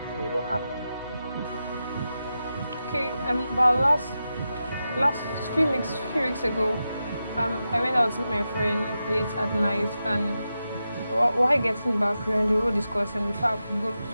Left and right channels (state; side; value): inverted; both; correlation -0.90